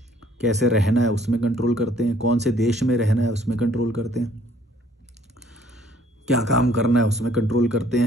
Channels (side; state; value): both; normal; correlation 0.60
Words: कैसे रहना है उसमें कंट्रोल करते हैं, कौन से देश में रहना है उसमें कंट्रोल करते हैं, क्या काम करना है उसमें कंट्रोल करते